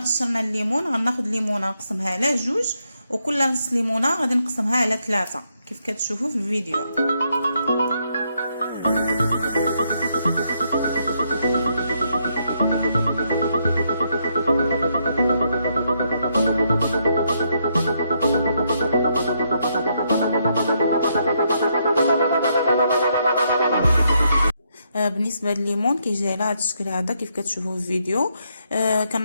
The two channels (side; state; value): both; inverted; correlation -0.76